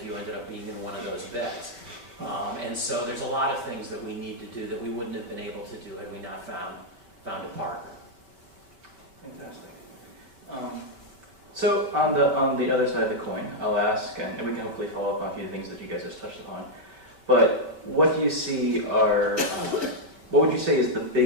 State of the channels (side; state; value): left; late; 4.9 ms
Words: you ended up being in one of those beds. And so there's a lot of things that we need to do that we wouldn't have been able to do had we not found a partner. Fantastic. So on the other side of the coin, I'll ask, and we can hopefully follow up on a few things that you guys just touched upon. But what do you see what would you say is the